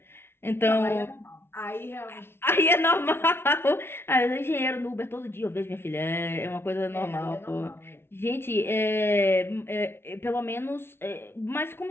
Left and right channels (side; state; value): right; late; 0.12 ms